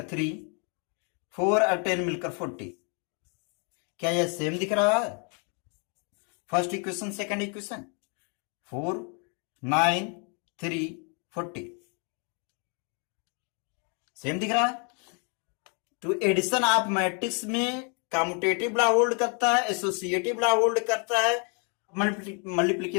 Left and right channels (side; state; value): right; quieter; 38.0 dB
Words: 3, 4 और 10 मिलकर 40। क्या यह सेम दिख रहा है, first equation second equation, 4 9 3 40 same दिख रहा है। तो एडिशन ऑफ मैट्रिक्स में कम्यूटेटिव लॉ होल्ड करता है, एसोसिएटिव लॉ होल्ड करता है।